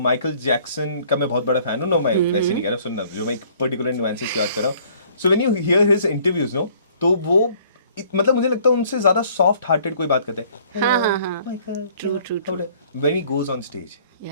जैक्सन का मैं बहुत बड़ा फैन हूँ, नो मैं वैसे नहीं कह रहा, सुनना जो मैं एक पर्टिकुलर न्यूएंसेस की बात कर रहा हूँ। So when you hear his interviews no, तो वो मतलब मुझे लगता है उनसे ज्यादा सॉफ्ट हार्टेड कोई बात करता है। हाँ। True. When he goes on stage,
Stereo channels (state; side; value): inverted; both; correlation -0.58